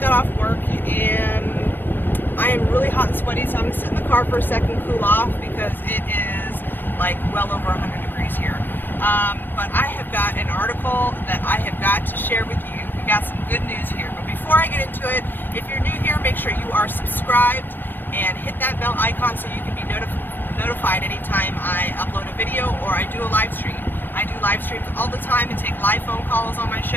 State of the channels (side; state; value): right; late; 0.094 ms